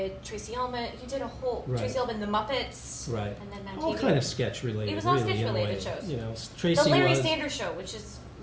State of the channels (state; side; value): identical; both; correlation 1.00